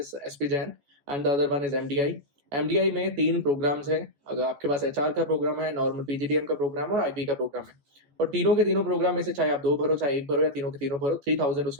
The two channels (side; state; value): left; late; 14 ms